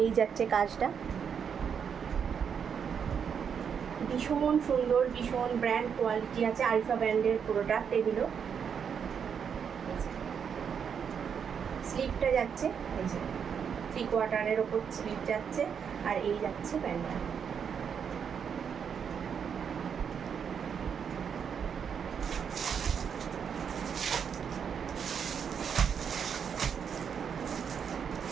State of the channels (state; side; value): quieter; left; 7.2 dB